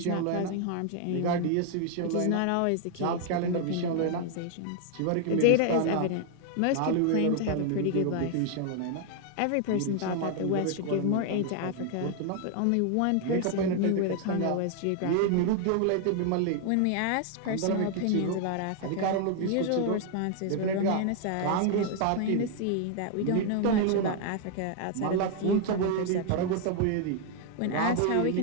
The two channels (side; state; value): both; different; correlation 0.00